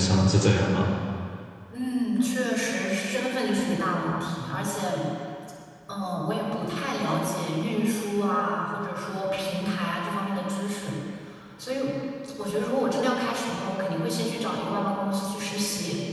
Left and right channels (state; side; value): identical; both; correlation 1.00